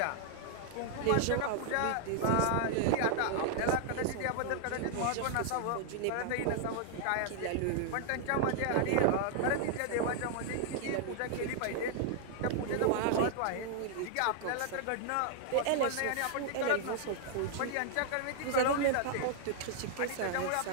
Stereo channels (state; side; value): different; both; correlation 0.00